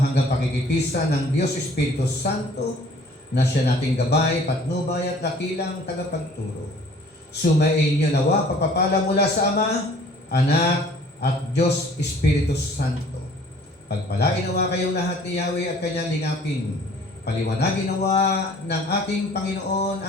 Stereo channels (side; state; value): both; normal; correlation 0.53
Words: pakikipisa ng Diyos Espiritu Santo na siya nating gabay, patnubay at dakilang tagapagturo. Sumain niyo nawa pagpapala mula sa Ama, Anak, at Diyos Espiritu Santo. Pagpalain nawa kayong lahat ni Yahweh at kanyang lingapin. Paliwanagin nawa ng ating Panginoon